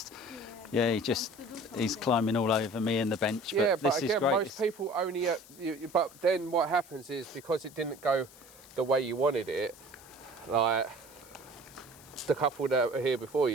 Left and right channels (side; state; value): left; noise; hiss, 22 dB below the sound